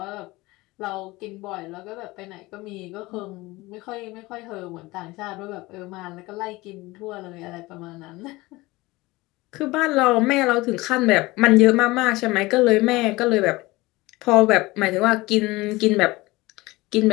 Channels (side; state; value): right; quieter; 20.9 dB